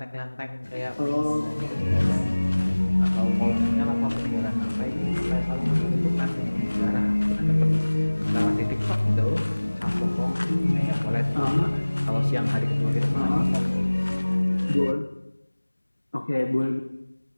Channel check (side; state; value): both; inverted; correlation -1.00